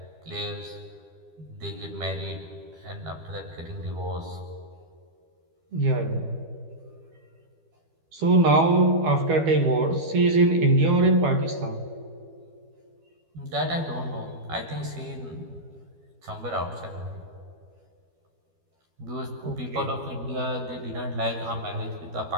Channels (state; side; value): late; left; 12 ms